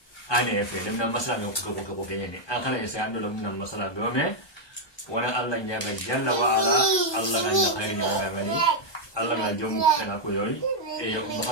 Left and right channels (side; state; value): right; late; 1.2 ms